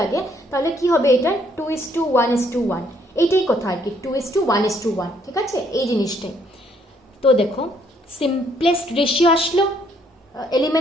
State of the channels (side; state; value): both; normal; correlation 0.68